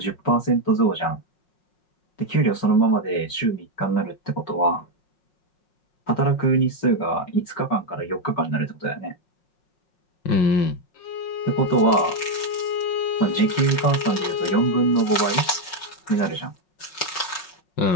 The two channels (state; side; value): late; right; 5.3 ms